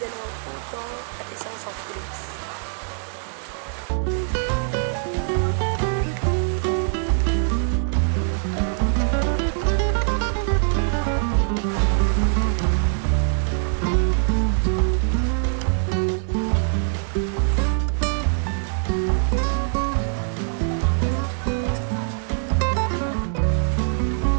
puto at isang soft drinks.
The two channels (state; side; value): silent; left; digital silence